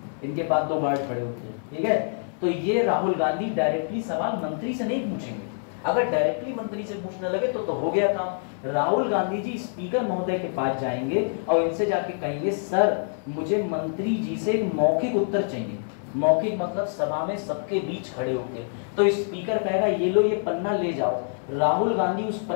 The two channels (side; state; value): right; silent; 61 dB below the other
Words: इनके पास 2 गार्ड खड़े होते हैं, ठीक है। तो ये राहुल गांधी डायरेक्टली सवाल मंत्री से नहीं पूछेंगे। अगर डायरेक्टली मंत्री से पूछने लगे तो हो गया काम। राहुल गांधी जी स्पीकर महोदय के पास जाएंगे और इनसे जाके कहेंगे सर मुझे मंत्री जी से एक मौखिक उत्तर चाहिए। मौखिक मतलब सभा में सबके बीच खड़े होके। तो स्पीकर कहेगा ये लो, ये पन्ना ले जाओ। राहुल गांधी उस